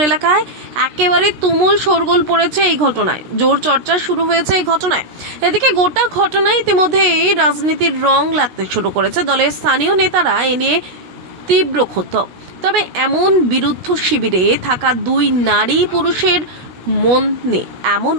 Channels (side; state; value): left; late; 16 ms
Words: এলাকায় একেবারে তুমুল শোরগোল পড়েছে এই ঘটনায়, জোর চর্চা শুরু হয়েছে এই ঘটনায়। এদিকে গোটা ঘটনায় ইতিমধ্যে রাজনীতির রং লাগতে শুরু করেছে। দলের স্থানীয় নেতারা এ নিয়ে তীব্র ক্ষুব্ধ। তবে এমন বিরুদ্ধ শিবিরে থাকা দুই নারী পুরুষের মনে এমন